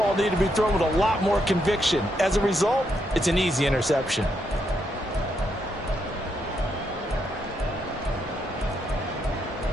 needed to be thrown with a lot more conviction. As a result, it's an easy interception.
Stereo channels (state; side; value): normal; both; correlation 0.79